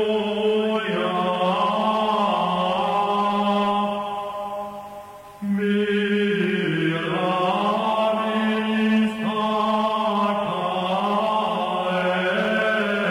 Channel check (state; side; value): identical; both; correlation 1.00